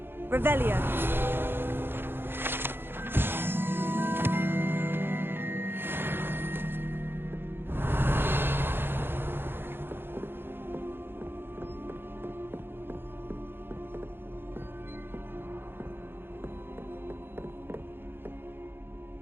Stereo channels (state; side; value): late; left; 0.10 ms